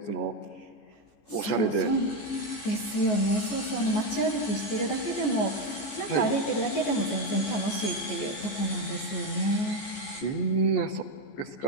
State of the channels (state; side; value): late; right; 14 ms